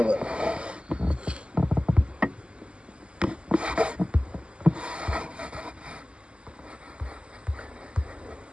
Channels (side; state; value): left; late; 0.052 ms